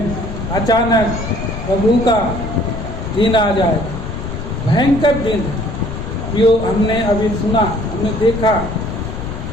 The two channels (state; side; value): noise; left; rumble, 7 dB below the sound